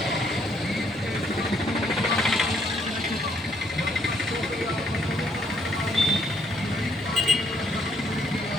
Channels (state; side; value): normal; both; correlation 0.70